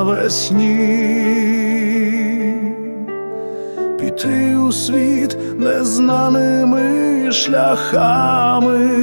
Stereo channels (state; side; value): inverted; both; correlation -1.00